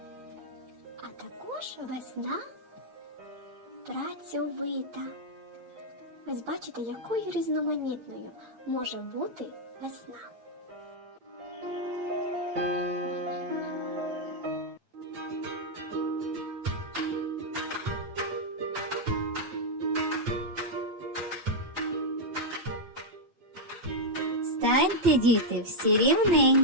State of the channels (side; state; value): left; late; 8.7 ms